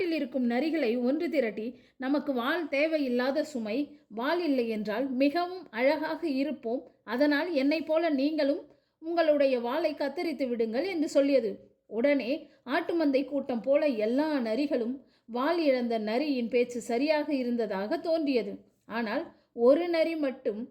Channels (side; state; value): both; identical; correlation 1.00